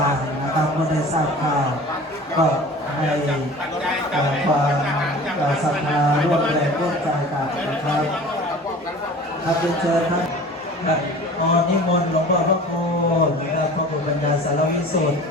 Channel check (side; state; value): both; normal; correlation 0.41